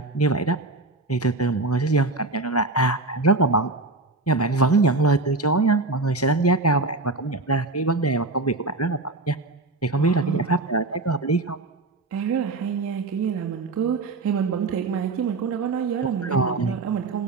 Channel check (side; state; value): left; quieter; 3.3 dB